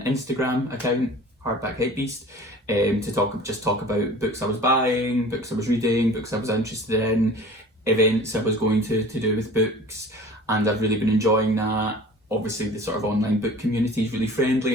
Instagram account, Hardback Hypebeast, to talk about books I was buying, books I was reading, books I was interested in, events I was going to do with books, and I've really been enjoying that. Obviously the sort of online book community is really friendly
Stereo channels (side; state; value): both; normal; correlation 0.43